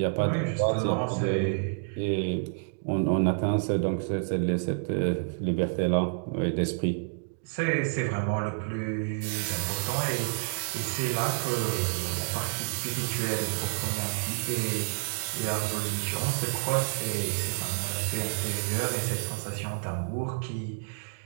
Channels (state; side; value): silent; left; digital silence